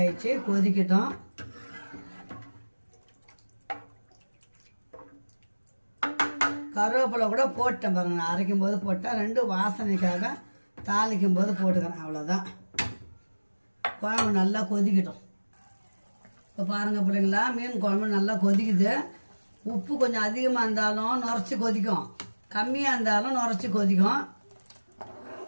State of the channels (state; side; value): inverted; both; correlation -1.00